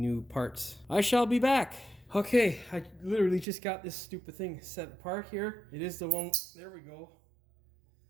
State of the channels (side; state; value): left; drops out; at 3.5 s